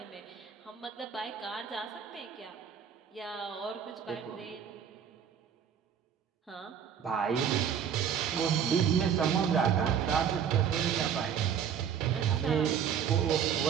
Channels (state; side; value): quieter; left; 8.1 dB